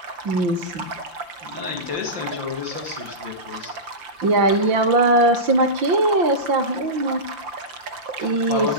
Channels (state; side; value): late; left; 5.8 ms